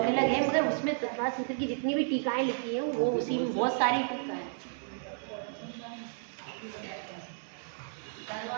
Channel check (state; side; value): silent; left; digital silence